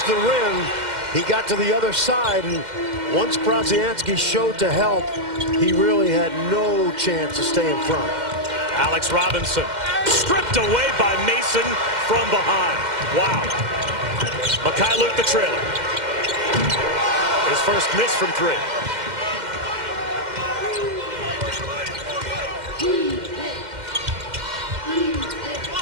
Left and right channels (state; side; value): late; left; 2.1 ms